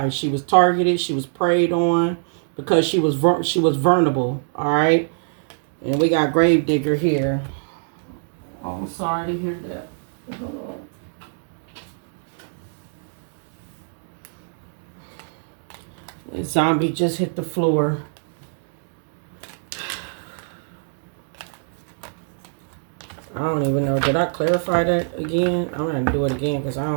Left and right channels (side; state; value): left; silent; digital silence